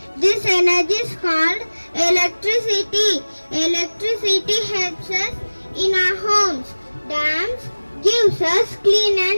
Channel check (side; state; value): both; inverted; correlation -1.00